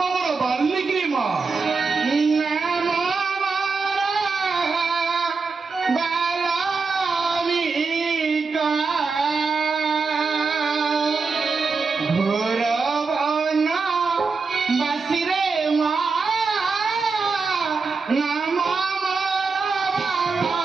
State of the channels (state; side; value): quieter; left; 4.6 dB